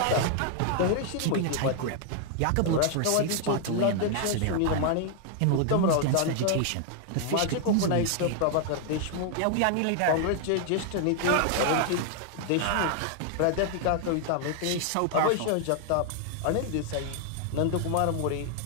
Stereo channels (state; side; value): different; both; correlation 0.00